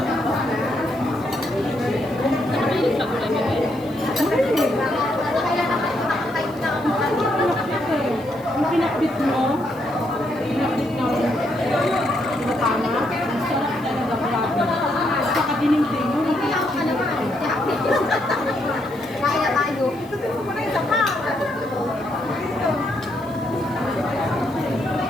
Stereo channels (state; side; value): noise; left; hiss, 26 dB below the sound